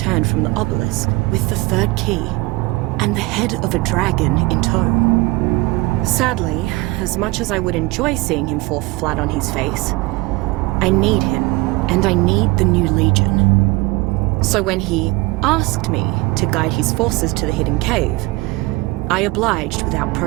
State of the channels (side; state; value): left; quieter; 22.9 dB